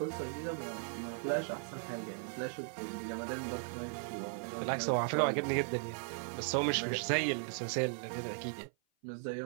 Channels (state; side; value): silent; left; 53 dB below the other